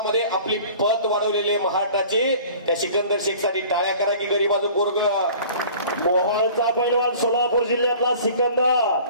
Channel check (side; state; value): both; inverted; correlation -0.46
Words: आपली पत वाढवलेले महाराष्ट्राचे त्या सिकंदर शेखसाठी टाळ्या करा की गरीबाचं पोरग. मोहोळचा पैलवान सोलापूर जिल्ह्यातला सिकंदर.